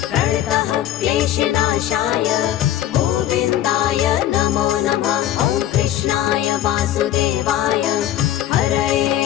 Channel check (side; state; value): right; quieter; 12.3 dB